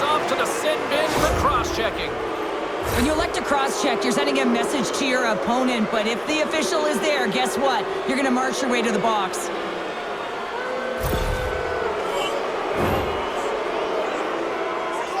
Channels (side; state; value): both; identical; correlation 1.00